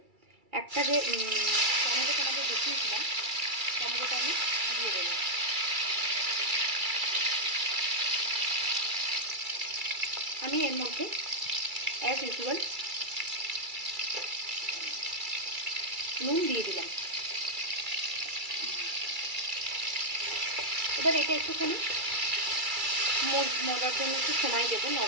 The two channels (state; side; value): late; left; 2.3 ms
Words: একটা যে টমেটো তোমাদের দেখিয়েছিলাম, টমেটোটা আমি দিয়ে দেব। আমি এর মধ্যে অ্যাজ ইউজুয়াল নুন দিয়ে দিলাম। এবার এটা একটুখানি মরার জন্য একটু সময় দেবো,